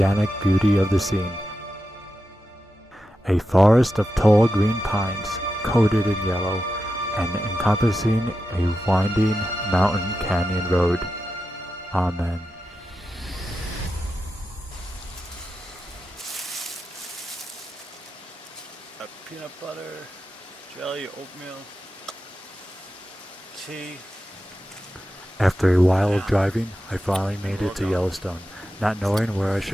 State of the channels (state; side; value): normal; both; correlation 0.90